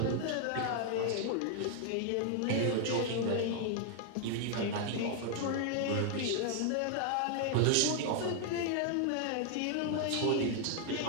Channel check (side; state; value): both; different; correlation 0.00